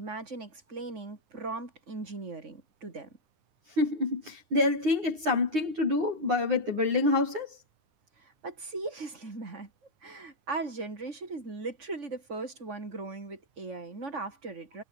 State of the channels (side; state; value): left; late; 9.6 ms